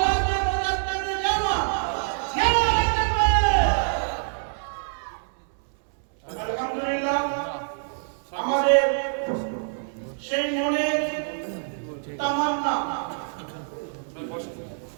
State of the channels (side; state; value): left; silent; 61 dB below the other